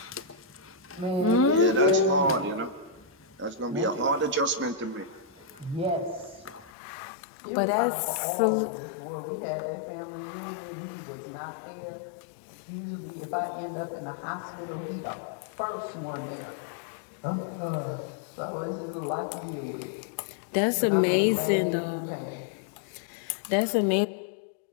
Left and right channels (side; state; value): right; drops out; at 6.7 s